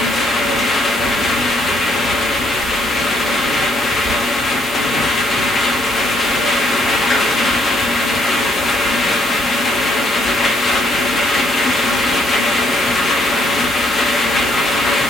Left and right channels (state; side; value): normal; both; correlation 0.69